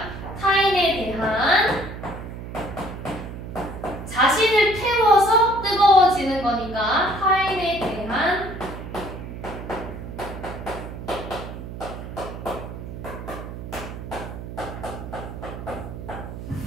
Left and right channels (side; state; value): right; noise; hum, 10 dB below the sound